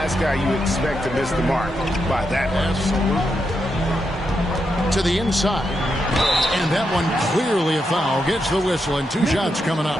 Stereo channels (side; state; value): both; normal; correlation 0.84